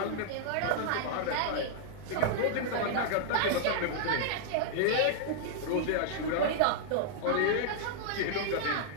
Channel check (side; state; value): both; different; correlation -0.01